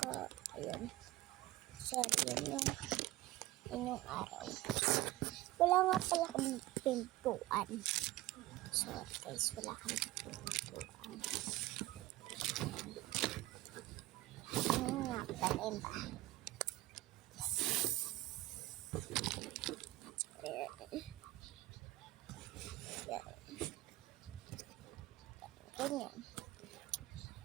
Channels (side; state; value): left; quieter; 17.7 dB